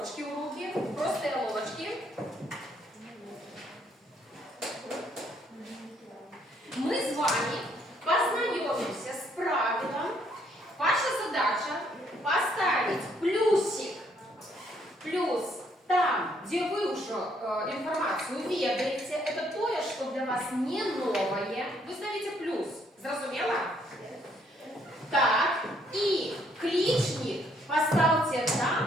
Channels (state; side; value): normal; both; correlation 0.68